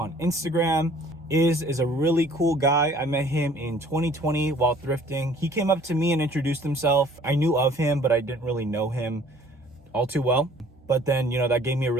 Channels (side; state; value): both; normal; correlation 0.54